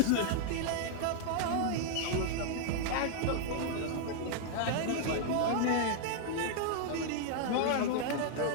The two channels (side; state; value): both; different; correlation -0.01